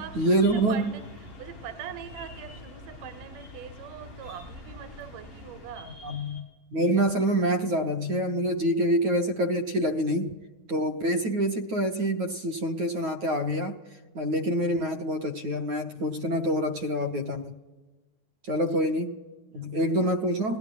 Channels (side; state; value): left; late; 9.4 ms